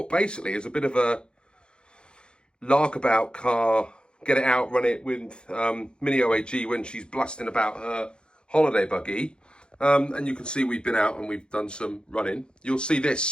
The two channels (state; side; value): late; right; 0.051 ms